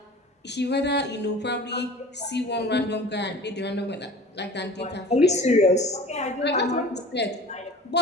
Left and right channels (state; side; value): normal; both; correlation 0.41